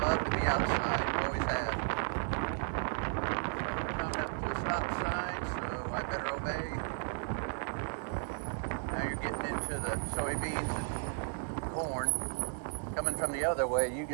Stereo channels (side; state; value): left; silent; 55 dB below the other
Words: love to be outside, always have. Stop sign, so I better obey. Now you're getting into the soybeans and corn. Coming from the other way, you